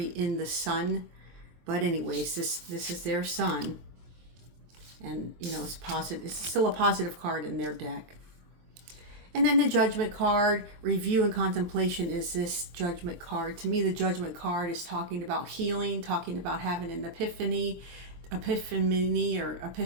in the sun, but anyways, this is their sun, and you know, it's positive. It's still a positive card in their deck. And then the Judgment card, review and contemplation, is this Judgment card. To me, the Judgment card is talking about healing, talking about having an epiphany,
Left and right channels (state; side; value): late; left; 23 ms